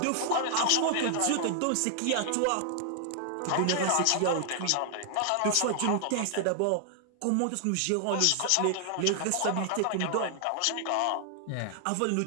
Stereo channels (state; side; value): different; both; correlation 0.00